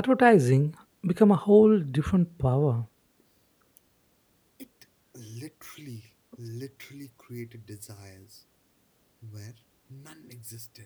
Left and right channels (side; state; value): both; identical; correlation 1.00